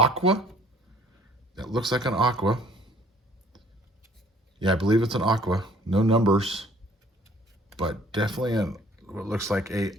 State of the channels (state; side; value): normal; both; correlation 0.56